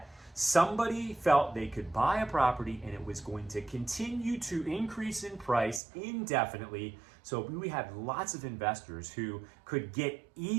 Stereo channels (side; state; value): left; drops out; at 5.8 s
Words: somebody felt they could buy a property and it was going to continue to increase in price indefinitely. So we had lots of investors who could get